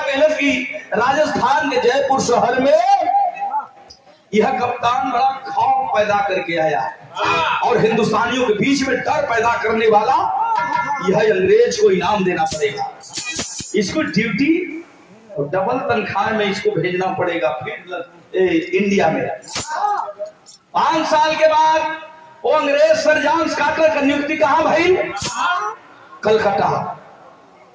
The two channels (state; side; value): identical; both; correlation 1.00